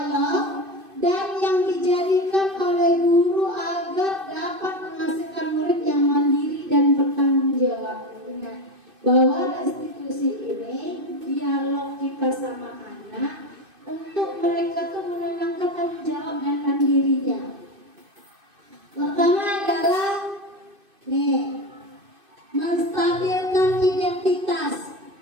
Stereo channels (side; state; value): left; late; 2.5 ms